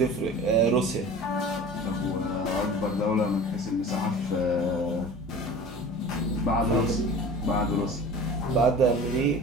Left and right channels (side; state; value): both; normal; correlation 0.39